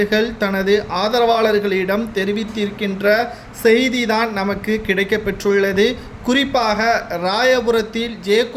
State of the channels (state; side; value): identical; both; correlation 1.00